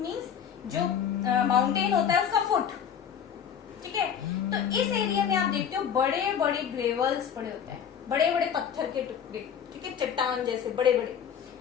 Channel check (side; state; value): right; quieter; 8.3 dB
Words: जो माउंटेन होता है उसका फुट, ठीक है. तो इस एरिया में आप देखते हो बड़े बड़े ग्रेवल्स पड़े होते हैं, बड़े बड़े पत्थर के टुकड़े, ठीक है, चट्टान जैसे बड़े बड़े,